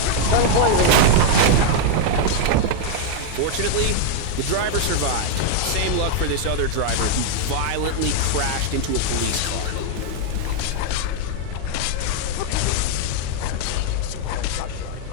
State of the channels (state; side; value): different; both; correlation 0.00